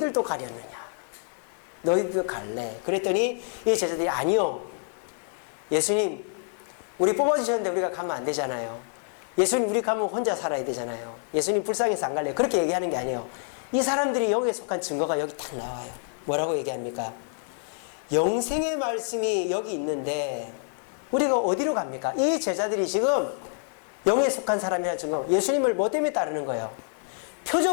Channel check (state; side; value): silent; right; 60 dB below the other